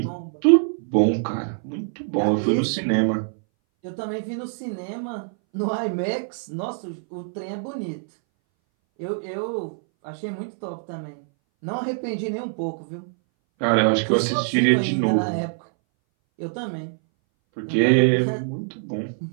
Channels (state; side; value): silent; left; 60 dB below the other